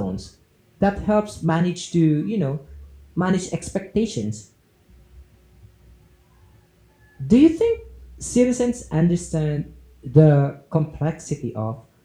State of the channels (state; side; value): identical; both; correlation 1.00